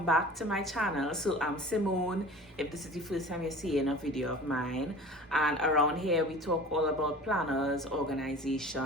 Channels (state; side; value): normal; both; correlation 0.41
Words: back to my channel. So I'm Simone, if this is the first time you're seeing a video of mine. And around here we talk all about planners,